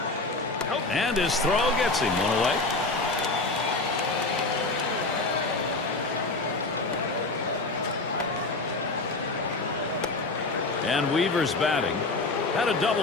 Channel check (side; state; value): right; quieter; 3.3 dB